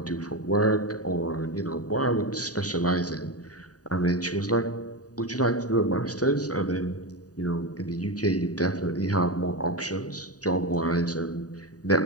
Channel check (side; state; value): right; late; 0.68 ms